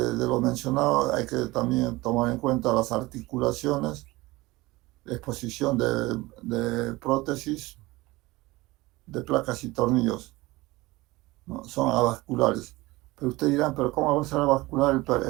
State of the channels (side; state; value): left; quieter; 20.7 dB